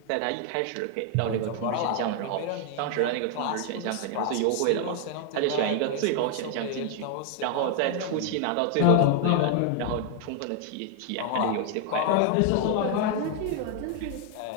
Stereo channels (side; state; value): both; different; correlation 0.00